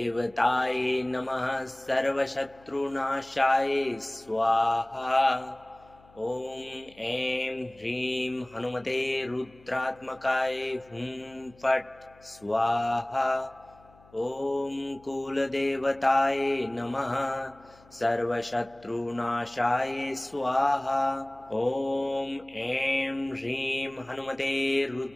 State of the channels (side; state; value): left; noise; hum, 27 dB below the sound